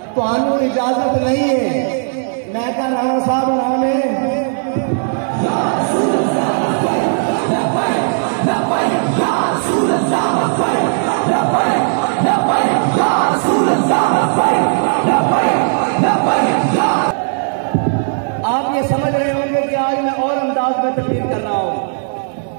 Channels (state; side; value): silent; left; digital silence